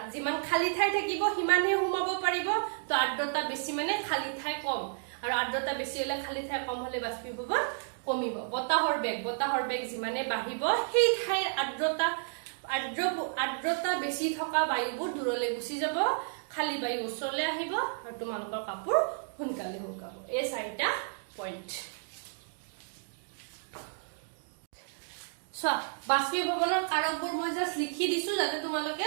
যিমান খালি ঠাই থাকিব সিমানে সোমাব পাৰিব তো আৰ্দ্ৰতা বেছি মানে খালি ঠাই কম আৰু আৰ্দ্ৰতা বেছি হলে খালি ঠাই কম হলে বাষ্পীভৱন কমিব বতাহৰ বেগ যিমানে বাঢ়িব সেই ঠাইৰ আৰ্দ্ৰতা বেছি থকা বায়ুবোৰ দূৰলৈ গুচি যাব খালি বায়ু ওচৰলৈ আহিব আৰু তোমালোকৰ কাপোৰ সোনকালে শুকাব এই 4টা পইণ্ট বাষ্পীভৱনৰ কাৰকবোৰ মই জাস্ট লিখি দিছো যাতে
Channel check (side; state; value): left; silent; digital silence